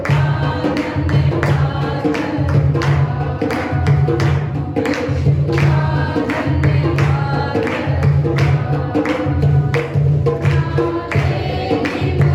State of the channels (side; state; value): both; identical; correlation 1.00